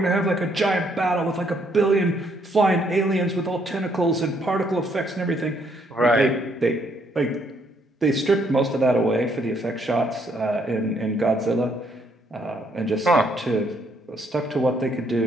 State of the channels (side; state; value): both; normal; correlation 0.70